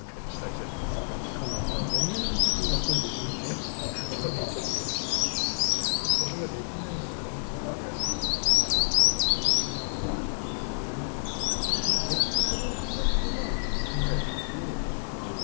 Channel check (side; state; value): right; silent; digital silence